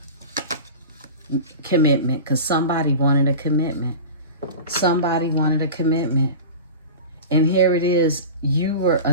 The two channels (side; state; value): both; inverted; correlation -0.33